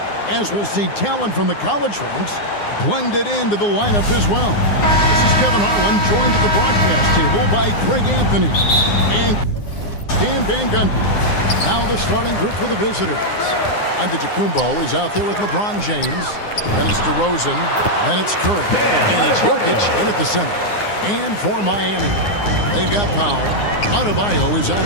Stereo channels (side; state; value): right; late; 9.7 ms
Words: as we'll see talent from the college ranks blended into the lineup as well. This is Kevin Harlan, joined at the broadcast table by Craig Anthony and Stan Van Gundy. Now the starting group for the visitors. Antetokounmpo is out there with LeBron James. Then it's DeRozan. Then it's Curry. And it's Jokic in at the center. And for Miami, they've got Powell. Adebayo is out